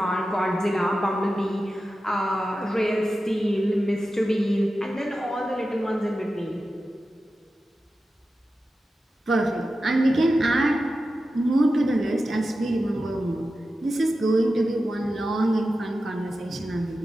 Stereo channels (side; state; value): both; normal; correlation 0.92